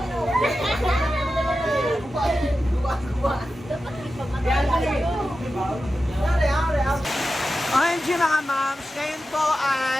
OMG mga moms, ngayon po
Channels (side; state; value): both; normal; correlation 0.92